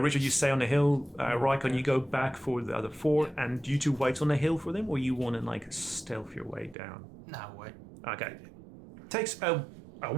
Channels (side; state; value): left; drops out; at 6.8 s